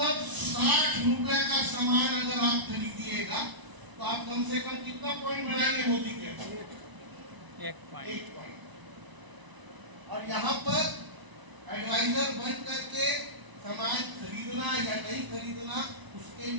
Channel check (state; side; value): late; left; 1.0 ms